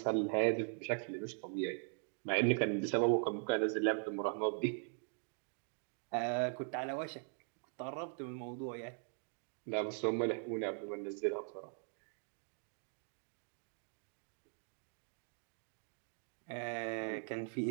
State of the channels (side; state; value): left; silent; 51 dB below the other